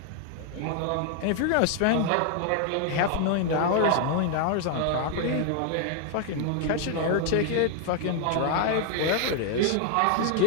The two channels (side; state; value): both; different; correlation 0.00